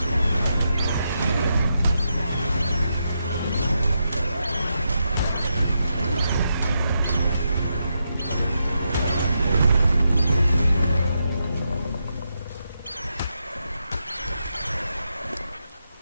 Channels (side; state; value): both; inverted; correlation -0.84